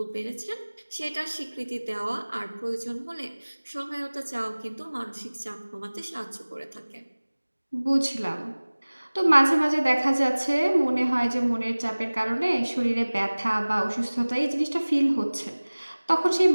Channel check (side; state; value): both; inverted; correlation -1.00